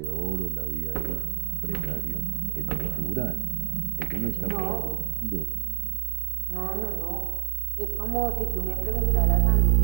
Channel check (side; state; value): left; silent; 60 dB below the other